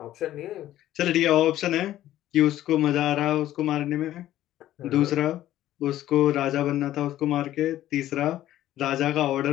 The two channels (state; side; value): quieter; right; 13.5 dB